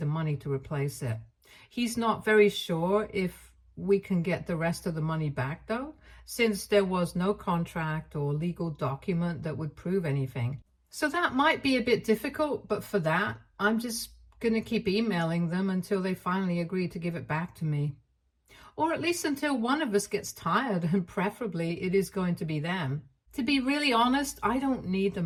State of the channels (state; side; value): identical; both; correlation 1.00